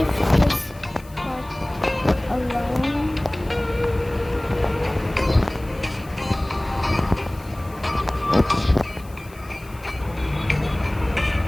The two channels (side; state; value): left; noise; hiss, 24 dB below the sound